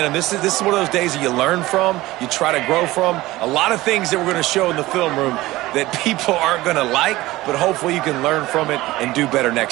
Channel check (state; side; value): quieter; left; 18.1 dB